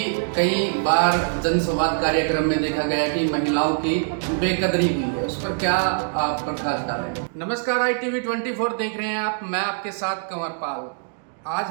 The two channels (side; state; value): left; silent; digital silence